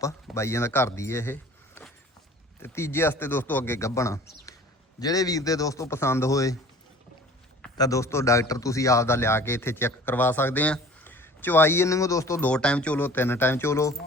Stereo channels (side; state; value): both; normal; correlation 0.46